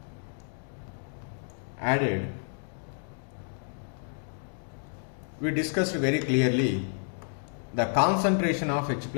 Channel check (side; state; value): right; silent; 58 dB below the other